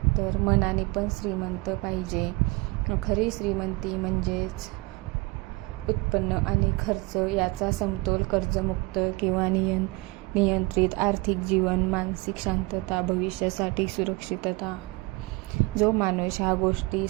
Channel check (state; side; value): quieter; left; 23.9 dB